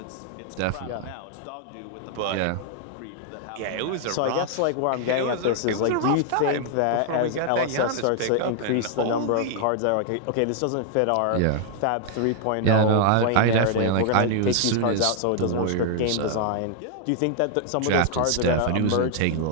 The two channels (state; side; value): different; both; correlation 0.00